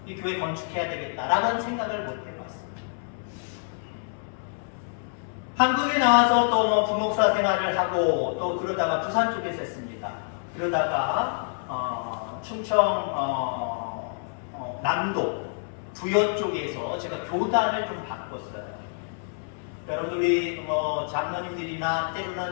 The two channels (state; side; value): silent; right; 60 dB below the other